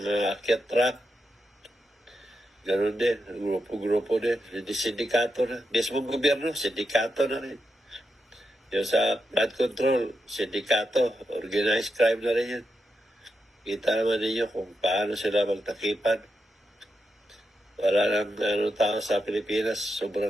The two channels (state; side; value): normal; both; correlation 0.86